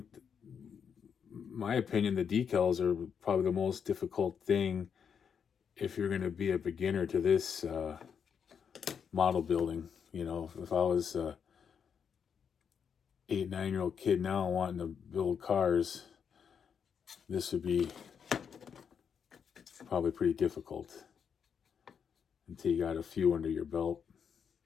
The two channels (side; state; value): right; quieter; 7.1 dB